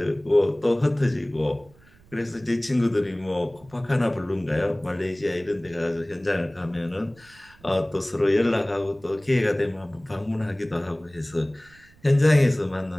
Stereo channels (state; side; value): noise; right; rumble, 27 dB below the sound